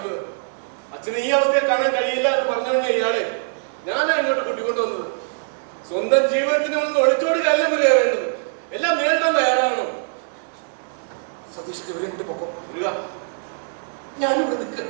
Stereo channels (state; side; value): silent; left; digital silence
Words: അച്ഛന് ഈ അവസ്ഥയെ കാണാൻ കഴിയില്ല എന്ന് പറഞ്ഞാൽ ഇയാളെ ഞാനാ ഇങ്ങോട്ട് കൂട്ടിക്കൊണ്ടുവന്നത്. സ്വന്തം ജീവിതത്തിന് ഒന്ന് ഒളിച്ചോടുകയല്ല വരിക വേണ്ടത്, എല്ലാം നേരിടാൻ തയ്യാറാണോ? സതീഷ് ഇവരെ കൂട്ടി പൊക്കോ. ഞാനിവിടെ നിൽക്കുക.